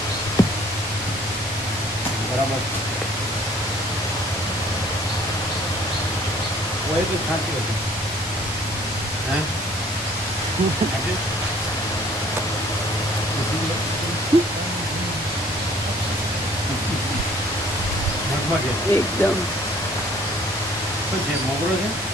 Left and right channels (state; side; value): normal; both; correlation 0.56